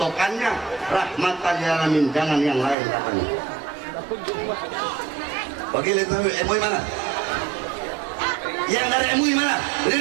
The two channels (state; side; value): drops out; left; at 2.8 s